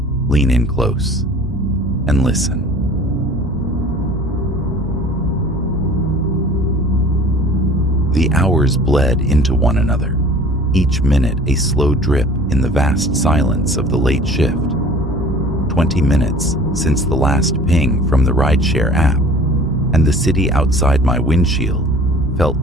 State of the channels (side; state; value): both; normal; correlation 0.47